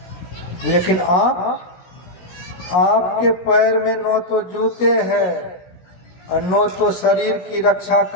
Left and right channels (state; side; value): late; right; 17 ms